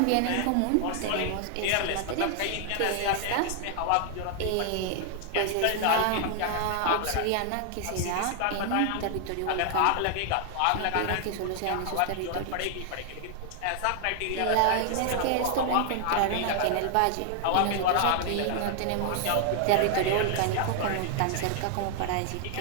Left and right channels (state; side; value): different; both; correlation 0.00